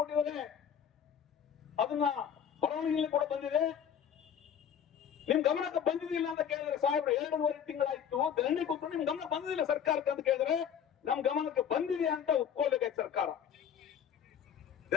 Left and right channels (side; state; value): right; quieter; 8.4 dB